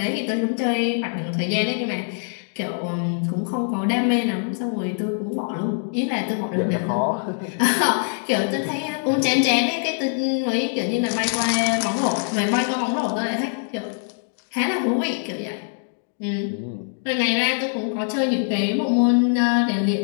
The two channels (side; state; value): right; silent; 63 dB below the other